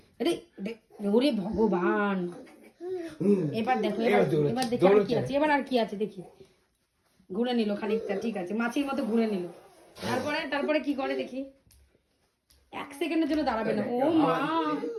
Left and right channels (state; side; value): identical; both; correlation 1.00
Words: ওরে ভগবান, এবার দেখো, এবার দেখি আর কি আছে, এবার আর কি আছে দেখি। ঘুরে নিল খানিকটা, ঠিক আছে, মাছির মতো ঘুরে নিল। তারপরে কি করে দেখি। 1 সেকেন্ডের জন্য দাঁড়াবে না। ও মা,